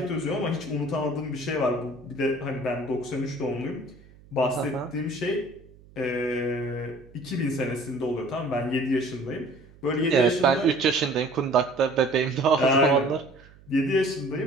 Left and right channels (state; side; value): noise; right; hum, 24 dB below the sound